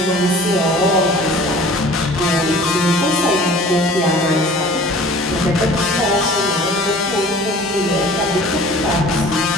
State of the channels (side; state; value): both; normal; correlation 0.46